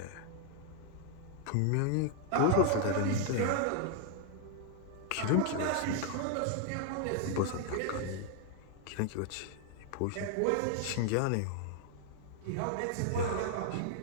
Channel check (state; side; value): different; both; correlation 0.00